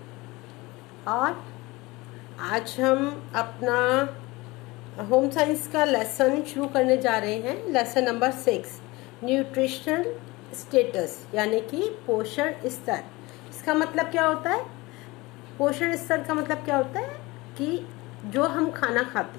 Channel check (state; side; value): quieter; right; 22.2 dB